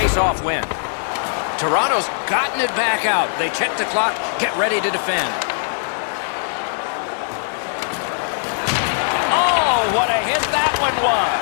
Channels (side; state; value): right; silent; digital silence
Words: win. Toronto's gotten it back out. They check the clock, get ready to defend. Oh, what a hit that one